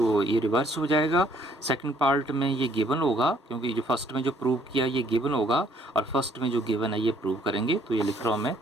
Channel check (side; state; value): both; normal; correlation 0.63